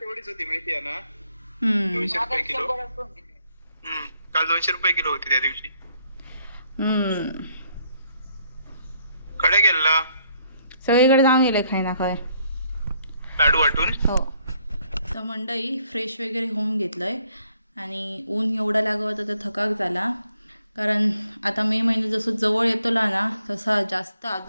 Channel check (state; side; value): inverted; both; correlation -0.70